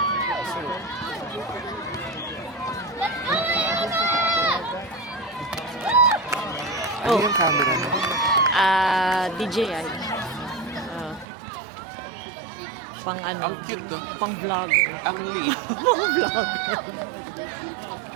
Ano yung camera mo? DJI. Pang ano? Ang cute to. Pang vlogger. Ang liit. Pang vlogger.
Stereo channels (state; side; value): drops out; left; at 11.2 s